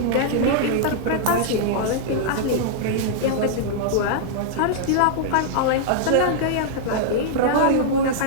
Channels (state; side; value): different; both; correlation -0.01